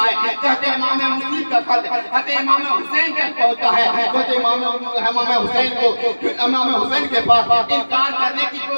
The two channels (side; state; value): both; inverted; correlation -1.00